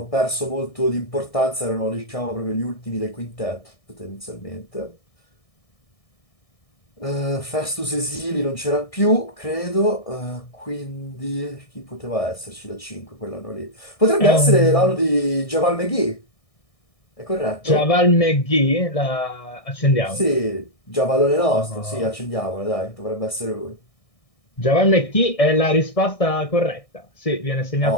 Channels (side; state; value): right; late; 1.6 ms